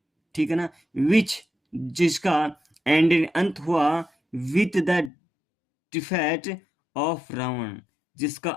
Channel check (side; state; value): right; drops out; at 5.1 s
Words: ठीक है ना, विच, जिसका एंड अंत हुआ with the defeat of Ravan, जिसका